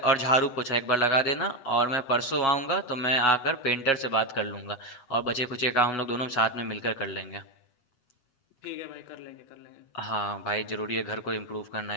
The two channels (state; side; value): late; right; 7.4 ms